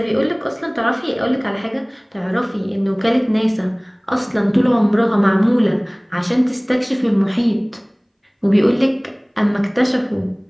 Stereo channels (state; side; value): identical; both; correlation 1.00